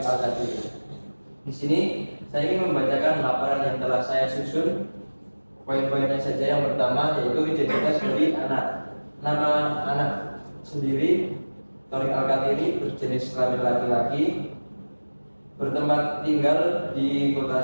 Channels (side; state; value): both; inverted; correlation -1.00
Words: Al-Qadir. Di sini saya ingin membacakan laporan yang telah saya susun. Poin-poinnya saja. Yang pertama yaitu identitas dari anak. Nama anak sendiri Torik Al-Qatiri, berjenis kelamin laki-laki, bertempat tinggal di